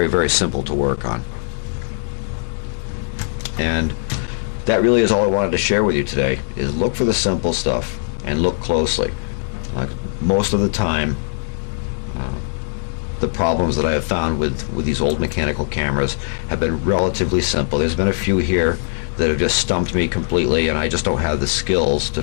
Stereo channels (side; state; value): right; silent; 66 dB below the other